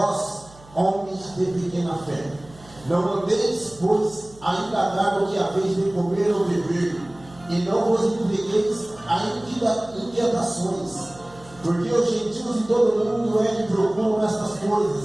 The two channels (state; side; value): noise; right; hum, 23 dB below the sound